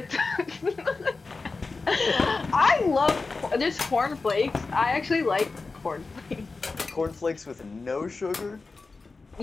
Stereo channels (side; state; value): right; quieter; 4.0 dB